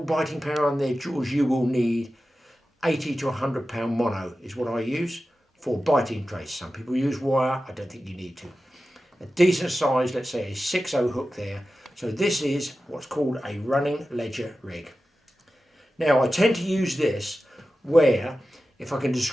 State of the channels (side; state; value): both; normal; correlation 0.93